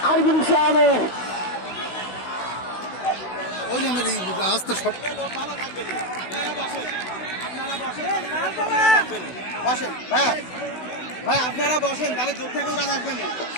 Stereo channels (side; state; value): right; late; 16 ms